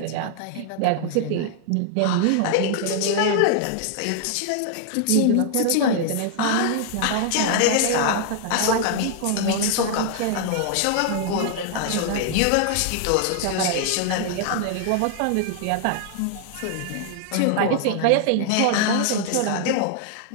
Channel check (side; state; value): both; different; correlation 0.00